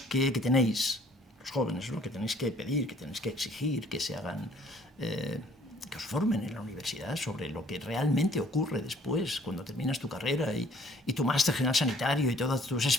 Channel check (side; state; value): both; normal; correlation 0.58